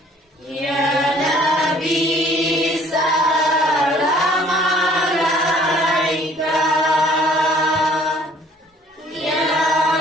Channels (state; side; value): normal; both; correlation 0.57